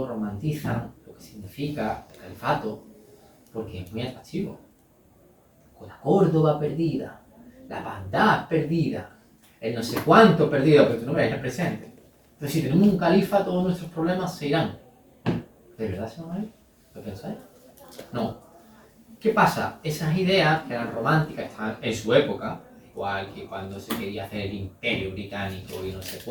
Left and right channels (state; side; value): identical; both; correlation 1.00